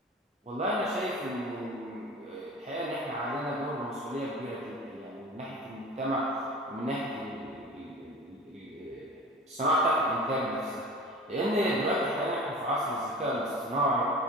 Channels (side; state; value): both; normal; correlation 0.38